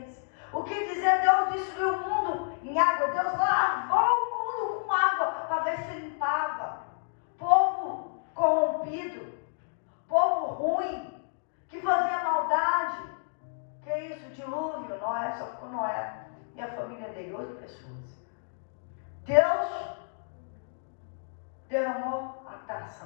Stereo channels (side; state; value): right; silent; digital silence